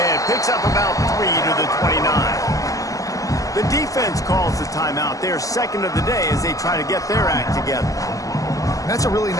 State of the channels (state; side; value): late; right; 0.17 ms